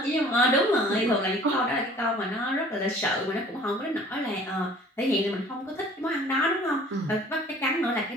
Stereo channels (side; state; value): both; normal; correlation 0.50